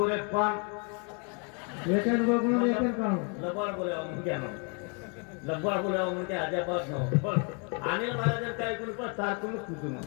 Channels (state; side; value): quieter; right; 37.0 dB